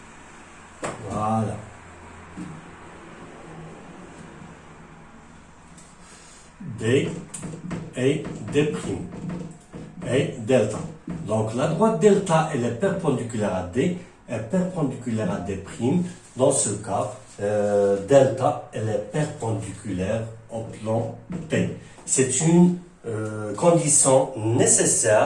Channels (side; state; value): both; identical; correlation 1.00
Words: Voilà. D et D'. Et delta. Donc la droite delta, elle est perpendiculaire à D, est perpendiculaire à D'. Dans ce cas, delta, elle est perpendiculaire au plan P. C'est une condition